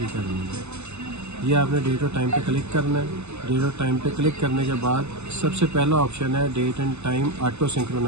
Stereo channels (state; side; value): late; left; 0.81 ms